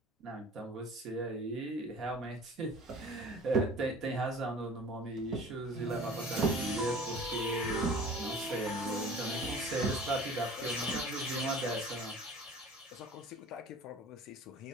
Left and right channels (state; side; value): normal; both; correlation 0.44